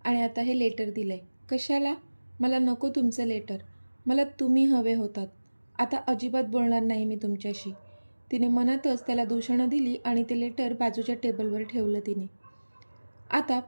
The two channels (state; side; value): inverted; both; correlation -1.00